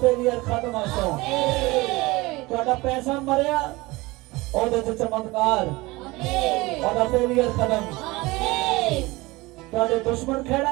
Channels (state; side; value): quieter; left; 21.8 dB